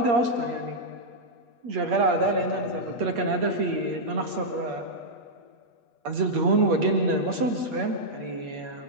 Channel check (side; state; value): left; late; 8.5 ms